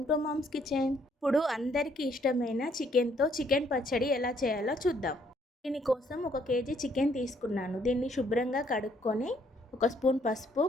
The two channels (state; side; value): normal; both; correlation 0.67